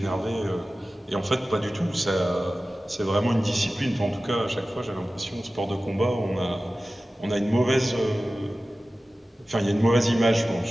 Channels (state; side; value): normal; both; correlation 0.96